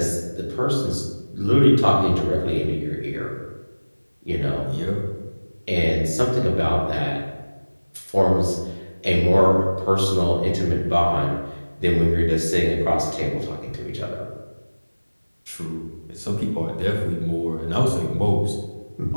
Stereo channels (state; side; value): inverted; both; correlation -1.00